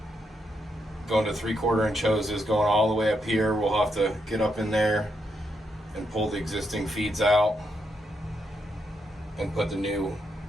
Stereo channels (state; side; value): normal; both; correlation 0.81